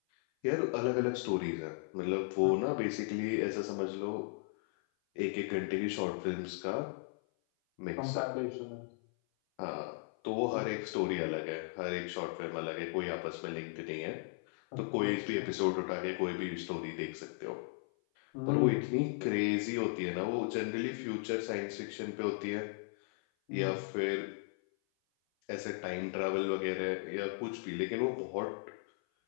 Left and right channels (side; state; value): right; silent; 54 dB below the other